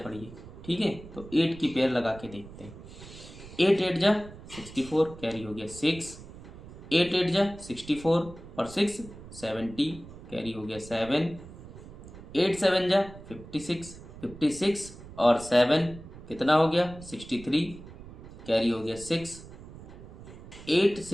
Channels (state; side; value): noise; right; rumble, 16 dB below the sound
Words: ठीक है, तो 8 की पेयर लगा के देखते हैं। 8 8 जा 64 कैरी हो गया 6, 8 8 जा 64 और 6 70 कैरी हो गया 7, 8 7 जा 56 56 और 7 कितना हो गया 63 कैरी हो गया 6, 8